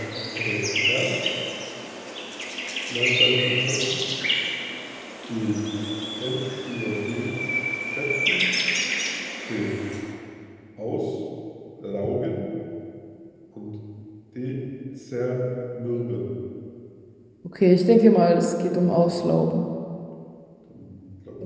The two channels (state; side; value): identical; both; correlation 1.00